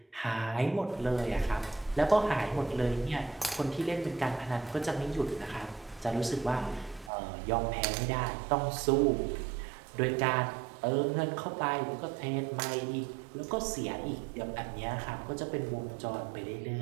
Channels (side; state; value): left; drops out; at 7.1 s